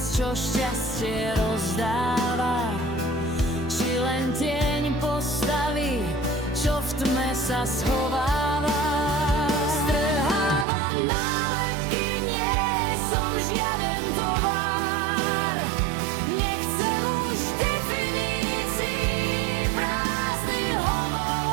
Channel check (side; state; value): left; drops out; at 10.7 s